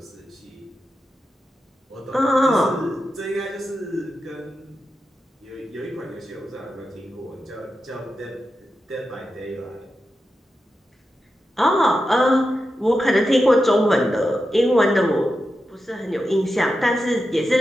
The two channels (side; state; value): both; normal; correlation 0.90